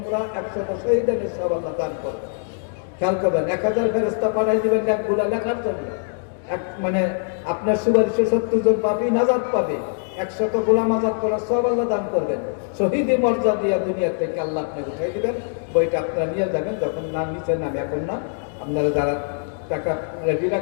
100 শহীদানের সওয়াব আল্লাহ দান করবেন। খেয়াল করবেন, 1000 ফেরেশতা পাঠাই দিবেন নেকগুলা লেখার জন্য। মানে আপনার সুপারিশে 70 জন পাপী নাজাত পাবে। 100 গোলাম আজাদ করার সওয়াব আল্লাহ দান করবেন। শহীদি মর্যাদা দিয়া দুনিয়া থেকে আল্লাহ আপনাকে উঠাই দিবেন। বইটা আপনারা নিয়ে যাবেন, যখন নাম নিচ্ছেন, আমি এখন না, আপনারা যারা টাকা রেডি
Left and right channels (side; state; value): right; silent; digital silence